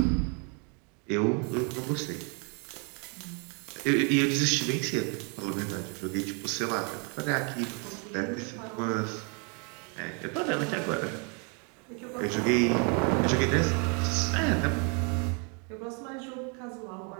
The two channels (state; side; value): quieter; left; 35.8 dB